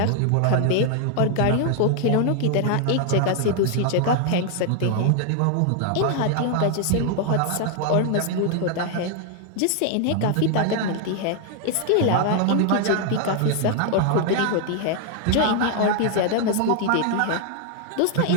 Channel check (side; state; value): both; different; correlation 0.00